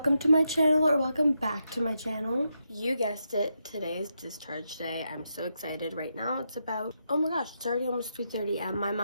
welcome to my channel, or welcome back to my channel. You guessed it, today is discharge day. I'm so excited. Right now it's about, oh my gosh, it's already almost 3:30 and my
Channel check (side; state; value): both; inverted; correlation -0.84